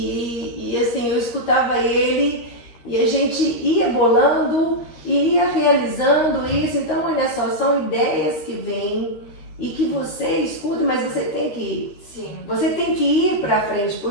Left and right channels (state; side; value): late; right; 13 ms